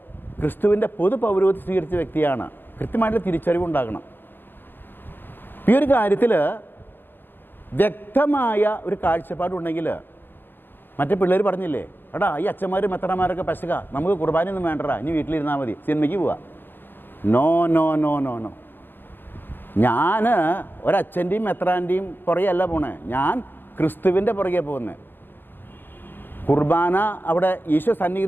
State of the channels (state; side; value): late; right; 0.097 ms